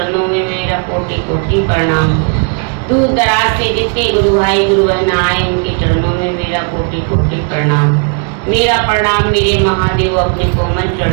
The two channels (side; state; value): left; quieter; 38.3 dB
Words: में मेरा कोटि कोटि प्रणाम। दूर दराज से जितने गुरु भाई गुरु बहन आए उनके चरणों में मेरा कोटि कोटि प्रणाम। मेरा प्रणाम मेरे महादेव अपने कोमल